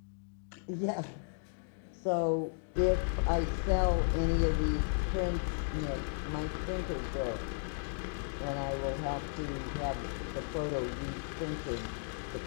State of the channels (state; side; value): silent; right; digital silence